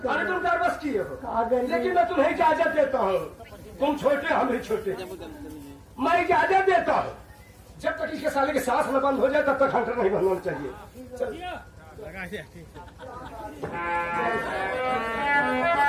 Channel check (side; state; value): both; identical; correlation 1.00